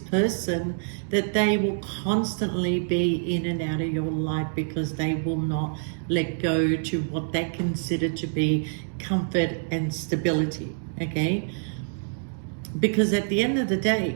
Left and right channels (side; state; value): left; silent; digital silence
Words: that they will constantly be in and out of your life, because they will not let go to what they consider to be comfort and stability, okay? Because at the end of the day,